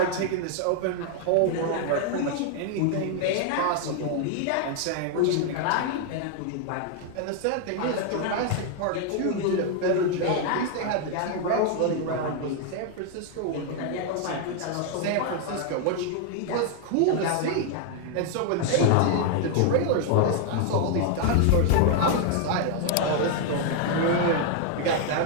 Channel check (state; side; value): different; both; correlation 0.00